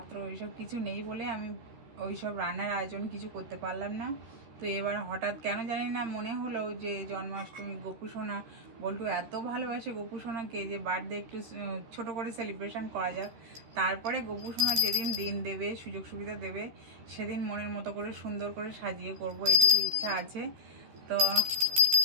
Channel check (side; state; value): left; late; 13 ms